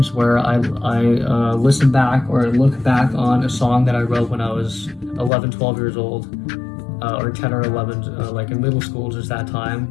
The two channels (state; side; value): drops out; right; at 5.3 s